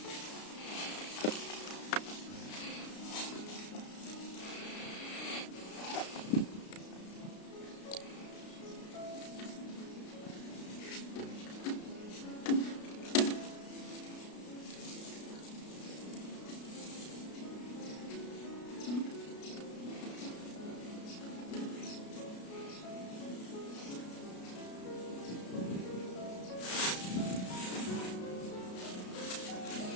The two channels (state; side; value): late; right; 33 ms